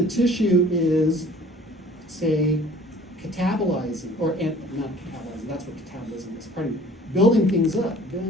tissue is, say, catabolizing, or not catabolizing, that's what catabolism is, pardon me, building things up.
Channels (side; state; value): both; normal; correlation 0.51